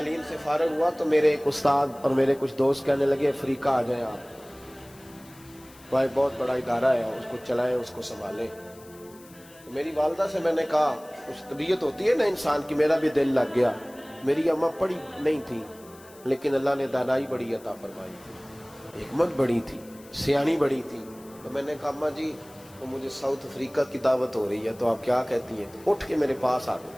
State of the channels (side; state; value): left; noise; hiss, 24 dB below the sound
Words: سے فارغ ہوا تو میرے ایک استاد اور میرے کچھ دوست کہنے لگے افریقہ آ جائیں آپ، وہاں بہت بڑا ادارہ ہے، اس کو چلائیں، اس کو سنبھالیں۔ تو میری والدہ سے میں نے کہا، کچھ طبیعت ہوتی ہے نا انسان کی، میرا بھی دل لگ گیا۔ میری اماں پڑھی نہیں تھی لیکن اللہ نے دانائی بڑی عطا فرمائی تھی، حکمت بڑی تھی، سیانی بڑی تھی۔ تو میں نے کہا اماں جی وہ مجھے ساؤتھ افریقہ کی دعوت ہو رہی ہے تو آپ کیا کہتی ہیں؟ تو اٹھ کے میرے پاس آ گئی